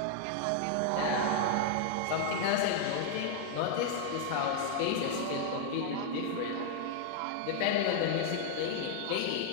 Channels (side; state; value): both; different; correlation 0.00